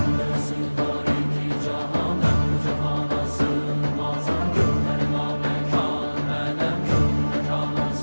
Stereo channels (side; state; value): both; inverted; correlation -1.00